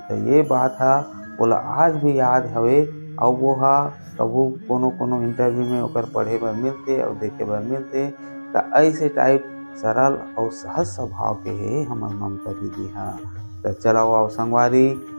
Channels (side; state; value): both; inverted; correlation -1.00